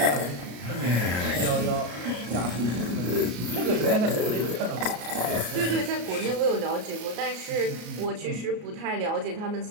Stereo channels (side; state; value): left; late; 33 ms